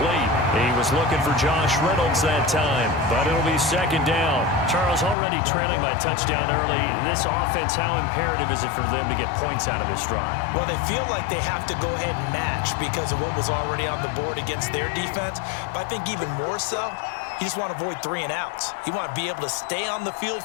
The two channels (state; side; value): drops out; right; at 5.2 s